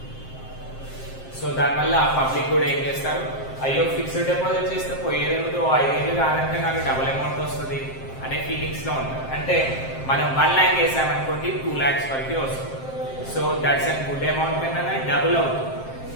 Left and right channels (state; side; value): late; right; 7.6 ms